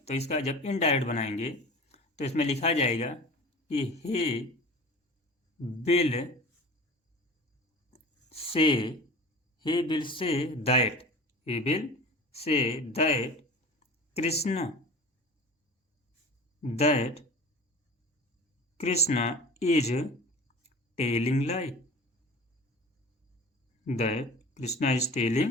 इसका जब इनडायरेक्ट बनाएंगे तो इसमें लिखा जाएगा कि he will say that Krishna is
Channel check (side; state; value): both; normal; correlation 0.38